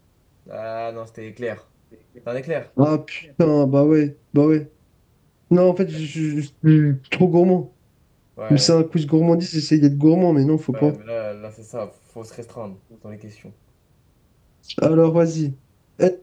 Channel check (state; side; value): identical; both; correlation 1.00